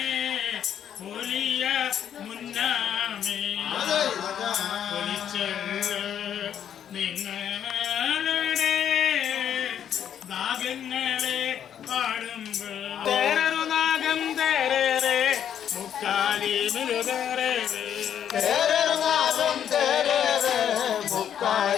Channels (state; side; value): quieter; right; 9.3 dB